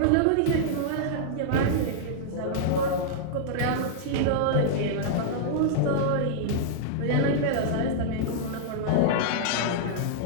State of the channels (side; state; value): both; different; correlation -0.02